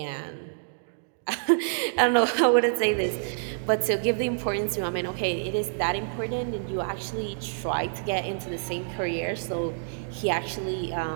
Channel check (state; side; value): silent; left; digital silence